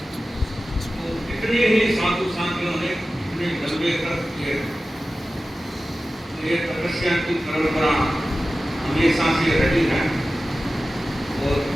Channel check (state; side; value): normal; both; correlation 0.95